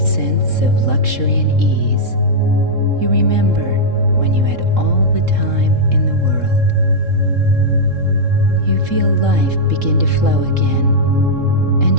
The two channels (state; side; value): late; left; 3.7 ms